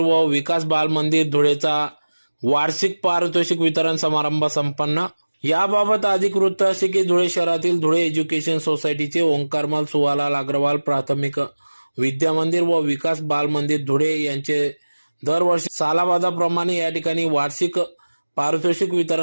विकास बाल मंदिर धुळेचा वार्षिक पारितोषिक वितरण समारंभ संपन्न। याबाबत अधिक वृत्त असे की धुळे शहरातील धुळे एज्युकेशन सोसायटीचे ओंकारमल सुवालाल अग्रवाल प्राथमिक विद्या मंदिर व विकास बाल मंदिर धुळे यांचे दरवर्षी सालाबादाप्रमाणे या ठिकाणी वार्षिक पारितोषिक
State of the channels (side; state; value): both; inverted; correlation -1.00